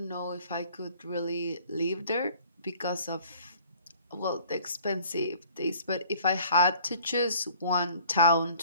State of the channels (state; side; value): inverted; both; correlation -0.54